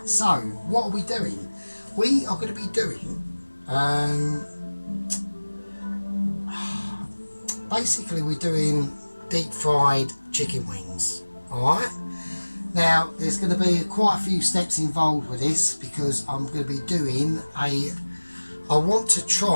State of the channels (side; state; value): both; inverted; correlation -1.00